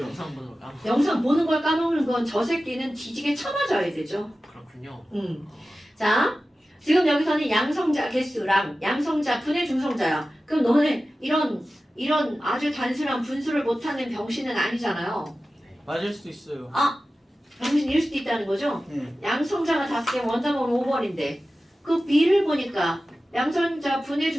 영상 보는 걸 까먹. 영상 보는 걸 까먹는 건 저 새끼는 뒤지게 쳐맞아야 되죠. 그렇군요. 자, 지금 여기서는 양성자 개수랑 양성자 분의 중성자야. 그럼 너네 이런 아주 단순한 분수를 못하는 병신은 아니잖아요. 맞을 수도 있어요. 아, 병신일 수도 있다는 거죠? 네. 양성자가 5개 원자번호 5번인데 그 B를 보니까 양성자 분의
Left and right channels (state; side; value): normal; both; correlation 0.95